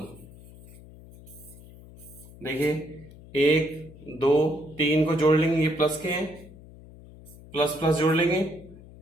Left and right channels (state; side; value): noise; left; hum, 20 dB below the sound